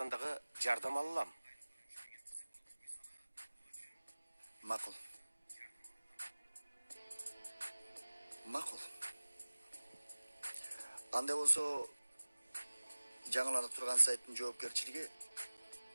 дагы жардам алам. Макул. Андай болсо, жаңыланып турган сайттын жоопкерчилиги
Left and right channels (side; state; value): both; inverted; correlation -1.00